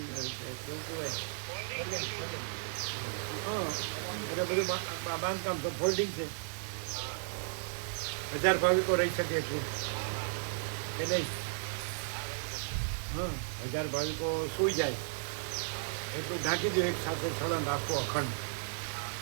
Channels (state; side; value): silent; left; 55 dB below the other